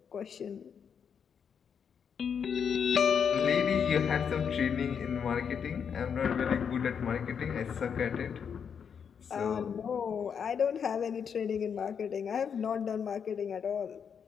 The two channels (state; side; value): quieter; right; 7.1 dB